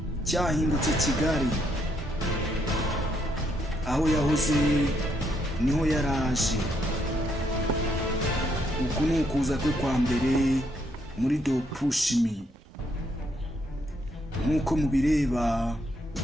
cyahindutse Kigali, aho yahoze niho yaraje. uku ni ukuza kwe kwa mbere muri dopushimi. nk'uko mubireba,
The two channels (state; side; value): normal; both; correlation 0.74